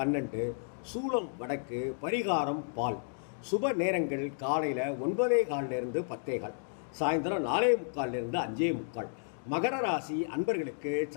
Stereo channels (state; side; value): silent; right; digital silence